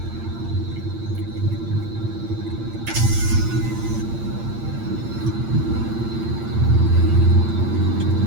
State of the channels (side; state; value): left; late; 8.8 ms